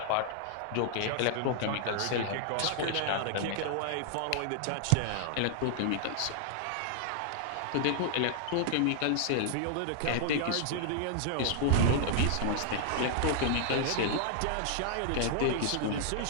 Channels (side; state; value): both; different; correlation -0.01